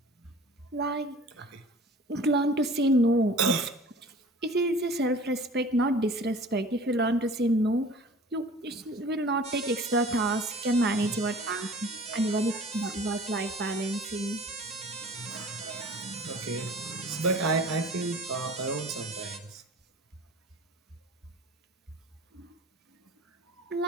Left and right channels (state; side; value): normal; both; correlation 0.44